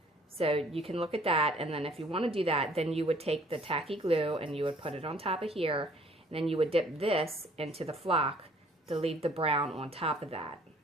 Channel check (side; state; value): both; normal; correlation 0.57